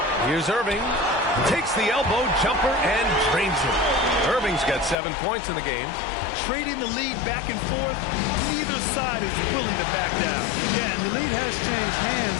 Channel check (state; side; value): drops out; right; at 5.0 s